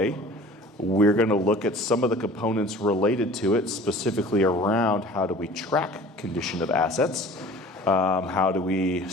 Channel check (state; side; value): normal; both; correlation 0.45